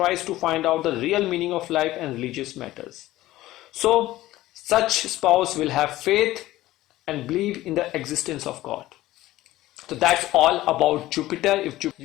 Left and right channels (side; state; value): right; quieter; 16.2 dB